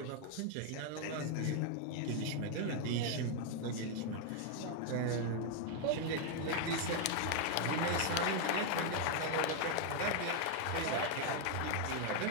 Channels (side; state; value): both; different; correlation 0.01